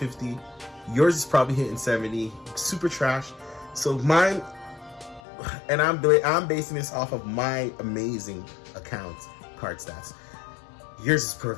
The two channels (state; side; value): drops out; right; at 5.2 s